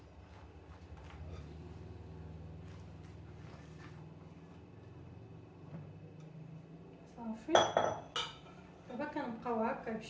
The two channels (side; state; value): both; identical; correlation 1.00